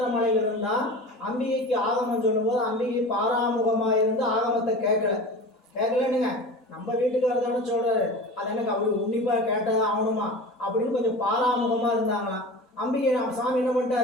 மலையில இருந்தா அம்பிகைக்கு ஆகமம் சொல்லும் போது அம்பிகை பாராமுகமாக இருந்து ஆகமத்தை கேட்கலன்னுங்க. நம்ம வீட்டுக்காரர் தானே சொல்றாரு, அது எனக்கு அப்படி உன்னிப்பா கேட்டதான் ஆகணுமா அப்படின்னு கொஞ்சம் பாராமுகமா இருந்தாங்களாம். அம்பிகை சாமி என்ன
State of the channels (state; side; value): normal; both; correlation 0.34